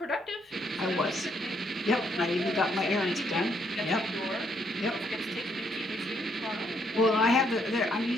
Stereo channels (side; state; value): both; normal; correlation 0.72